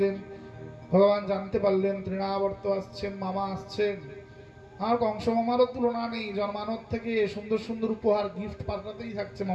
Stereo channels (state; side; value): identical; both; correlation 1.00